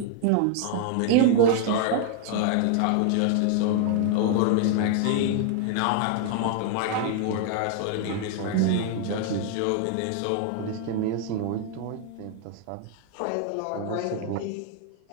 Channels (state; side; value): different; both; correlation 0.00